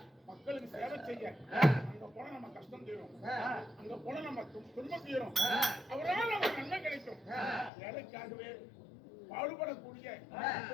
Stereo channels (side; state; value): right; drops out; at 7.7 s